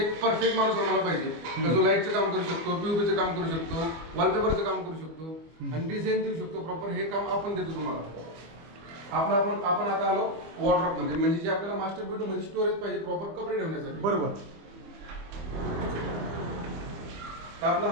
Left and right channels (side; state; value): left; late; 25 ms